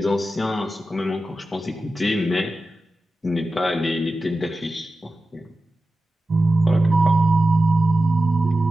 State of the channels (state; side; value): normal; both; correlation 0.94